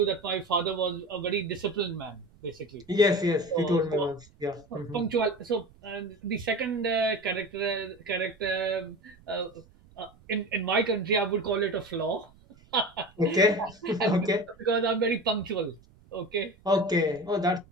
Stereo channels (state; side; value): noise; right; rumble, 27 dB below the sound